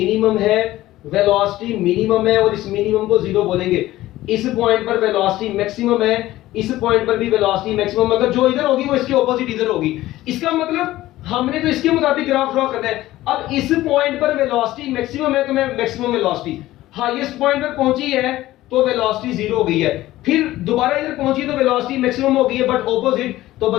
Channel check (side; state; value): right; quieter; 16.0 dB